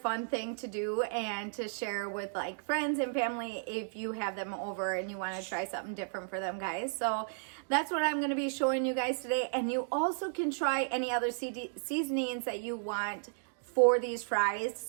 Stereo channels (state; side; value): silent; left; digital silence